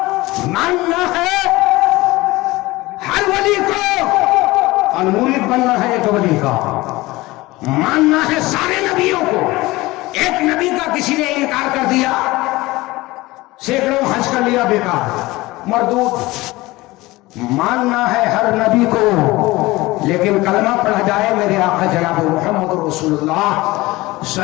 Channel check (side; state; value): right; quieter; 20.1 dB